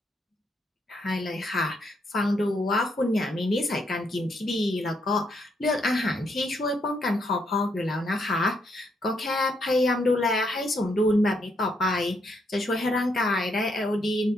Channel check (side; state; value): both; normal; correlation 0.76